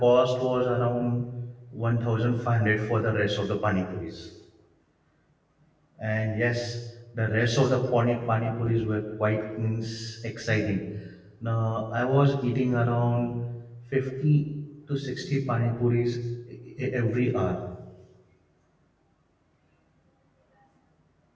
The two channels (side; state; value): both; identical; correlation 1.00